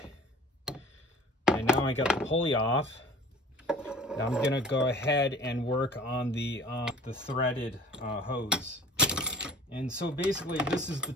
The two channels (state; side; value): normal; both; correlation 0.44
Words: And now I got the pulley off. Now I'm gonna go ahead and work on the threaded hose. And so basically this is the